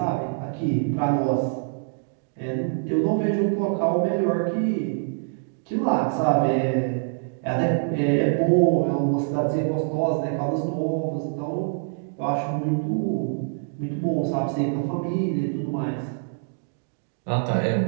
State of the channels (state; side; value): silent; left; digital silence